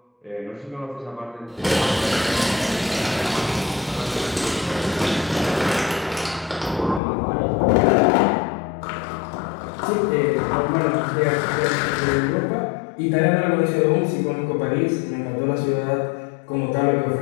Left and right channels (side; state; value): right; drops out; at 7.0 s